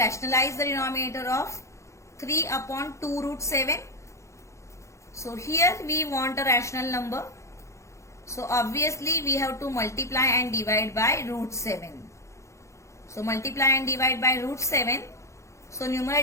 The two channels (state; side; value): late; right; 0.14 ms